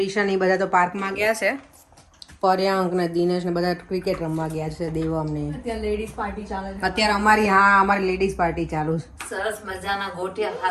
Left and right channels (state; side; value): identical; both; correlation 1.00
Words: એ બધા તો પાર્કમાં ગયા છે. પર્યાંક ને દિનેશ ને બધા ક્રિકેટ રમવા ગયા છે. દેવમ ને અત્યારે લેડીઝ પાર્ટી ચાલે છે. અત્યારે અમારી લેડીઝ પાર્ટી ચાલુ છે. સરસ મજાના